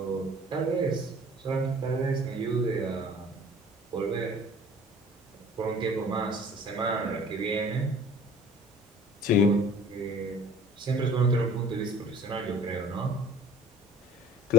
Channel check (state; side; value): normal; both; correlation 0.47